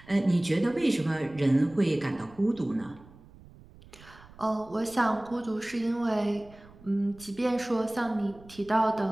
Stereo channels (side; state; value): right; noise; rumble, 22 dB below the sound